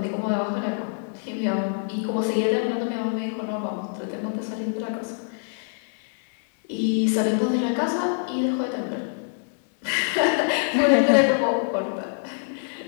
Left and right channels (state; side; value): silent; right; digital silence